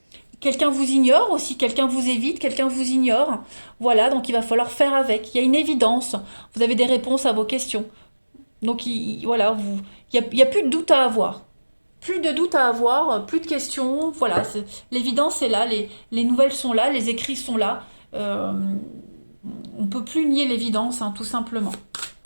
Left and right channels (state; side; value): inverted; both; correlation -1.00